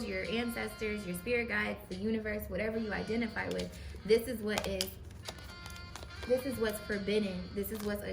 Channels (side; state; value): both; identical; correlation 1.00